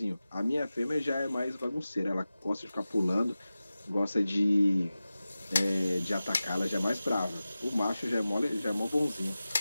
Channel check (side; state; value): both; inverted; correlation -0.95